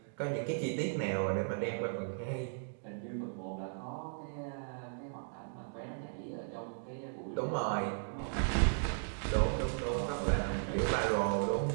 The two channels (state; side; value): silent; left; digital silence